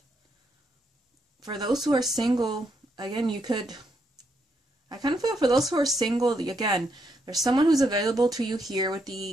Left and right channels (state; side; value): normal; both; correlation 0.78